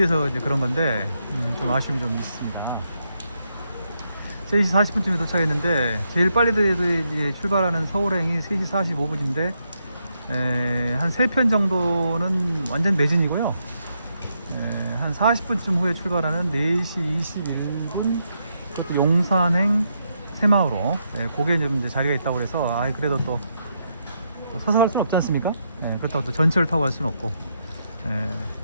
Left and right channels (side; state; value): both; inverted; correlation -0.80